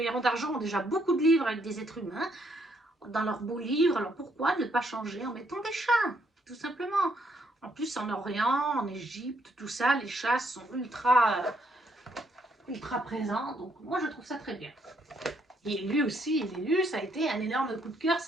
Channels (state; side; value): normal; both; correlation 0.72